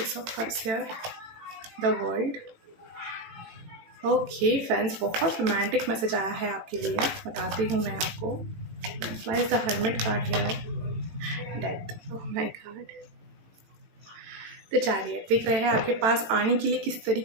of Cups here? The World. Okay friends, बहुत रोमांटिक मैसेज आया है आपके लिए, बताती हूँ मैं आपको। Why is the Hermit card here? Death. Oh my God. तो चैरियट दिख रहे हैं आपके पास आने के लिए किस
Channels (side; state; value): left; late; 18 ms